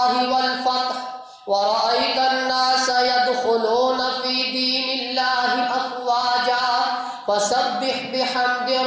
والفتح ورأيت الناس يدخلون في دين الله أفواجا فسبح بحمد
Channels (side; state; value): both; identical; correlation 1.00